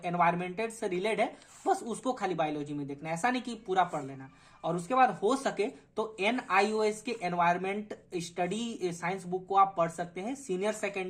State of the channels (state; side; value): identical; both; correlation 1.00